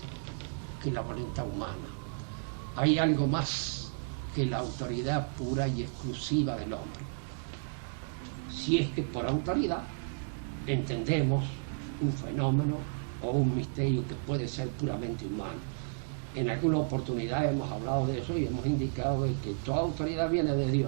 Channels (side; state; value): left; silent; digital silence